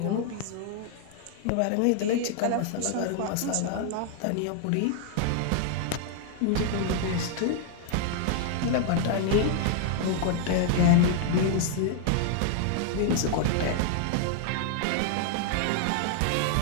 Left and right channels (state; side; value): different; both; correlation -0.01